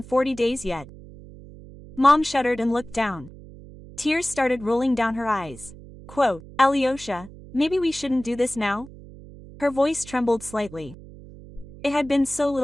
40 days yet. Mom shuddered and looked down. Tears started rolling down her eyes. Quote, "Alyosha, maybe we shouldn't do this now?" Her voice trembled slightly. It had been so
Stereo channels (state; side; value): noise; right; hum, 18 dB below the sound